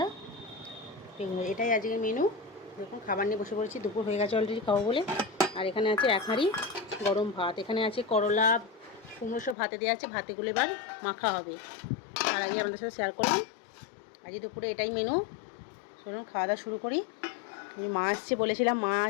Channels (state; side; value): drops out; right; at 9.6 s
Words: বেগুন ভাজা। এটাই আজকের মেনু। দেখুন খাবার নিয়ে বসে পড়েছি, দুপুর হয়ে গেছে অলরেডি খাবো বলে। আর এখানে আছে এক হাঁড়ি গরম ভাত। এখানে আছে করলা কুমড়ো সব ভাতে দেওয়া আছে, ভাতেগুলো এবার মাখা হবে। আর আগে আমাদের সাথে শেয়ার করুন আজকে দুপুরে এটাই মেনু। চলুন খাওয়া দাওয়া শুরু করি। মা আসছে বলেছিলাম, মা